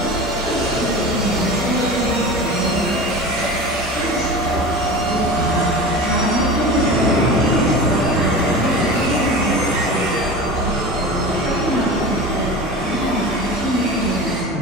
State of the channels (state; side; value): normal; both; correlation 0.32